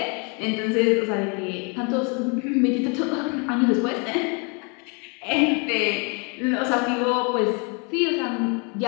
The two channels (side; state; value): right; quieter; 34.3 dB